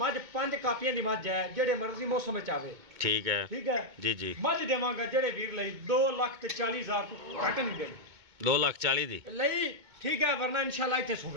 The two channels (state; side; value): late; left; 2.2 ms